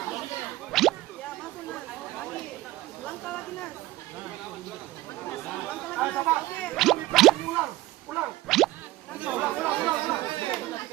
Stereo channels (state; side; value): quieter; left; 17.2 dB